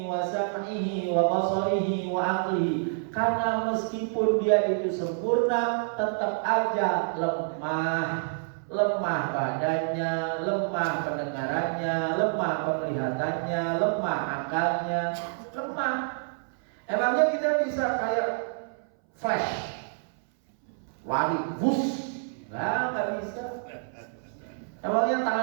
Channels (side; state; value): left; silent; 59 dB below the other